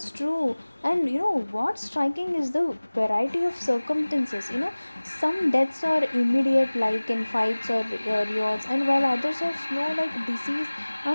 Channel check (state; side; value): inverted; both; correlation -1.00